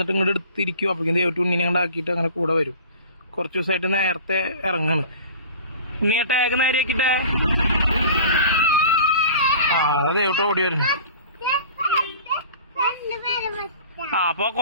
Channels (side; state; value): both; inverted; correlation -0.42